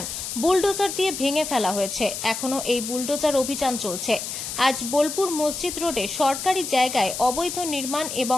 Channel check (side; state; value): left; noise; hiss, 6 dB below the sound